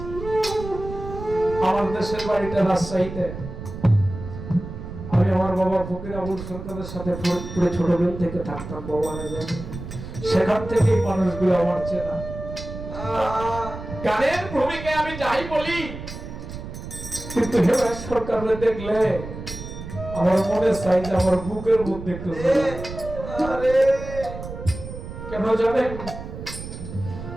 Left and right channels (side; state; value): right; noise; rumble, 10 dB below the sound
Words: আমার দেশের বাড়িটা রাজশাহীতে। আমি আমার বাবা ফকির আবুল সরকারের সাথে পুরো ছোটবেলা থেকে থাকতাম, বাবা জানে। সেখান থেকে মানুষগুলো আমার চেনা। গানের ভূমিকায় আমি যাই বলি, কিন্তু হেমন্ত সরকারকে দেখলে আমার মনে চাই যে আমার বুকের মধ্যে একটু কেন জানেন?